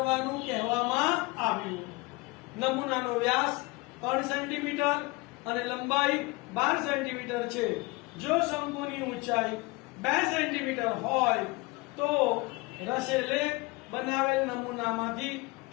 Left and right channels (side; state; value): right; quieter; 24.3 dB